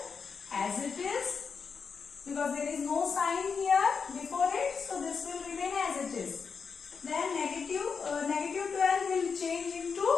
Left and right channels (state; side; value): quieter; right; 5.7 dB